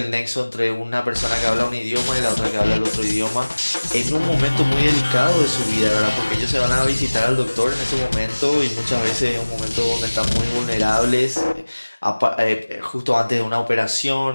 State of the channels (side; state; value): both; inverted; correlation -1.00